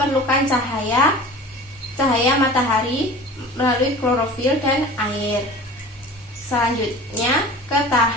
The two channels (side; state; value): both; normal; correlation 0.39